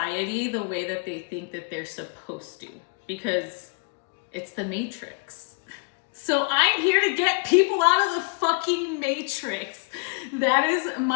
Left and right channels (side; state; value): right; quieter; 31.4 dB